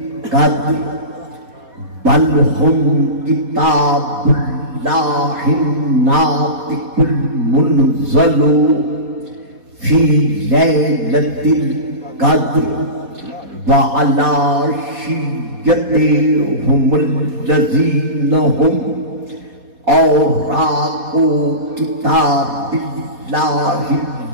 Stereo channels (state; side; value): late; left; 4.2 ms